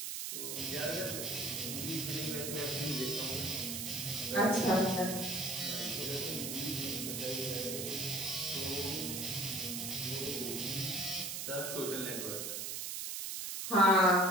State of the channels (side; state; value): right; noise; hiss, 4 dB below the sound